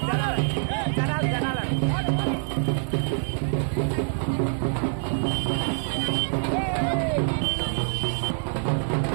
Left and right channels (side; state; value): left; silent; digital silence